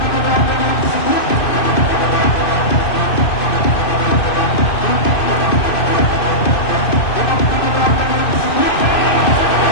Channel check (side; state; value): right; late; 2.5 ms